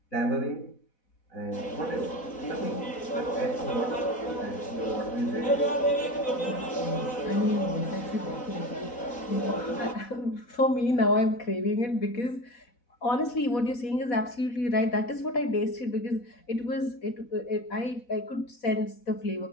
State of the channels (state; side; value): late; right; 4.1 ms